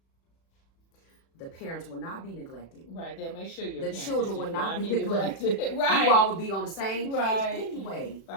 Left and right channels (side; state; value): right; late; 36 ms